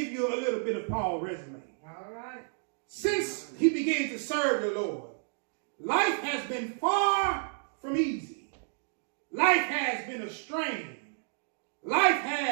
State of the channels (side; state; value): left; silent; 57 dB below the other